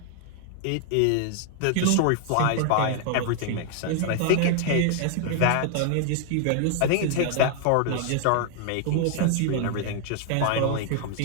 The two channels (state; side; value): different; both; correlation 0.00